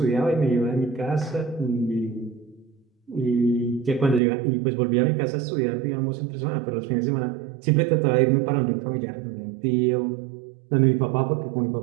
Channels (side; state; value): left; drops out; at 4.2 s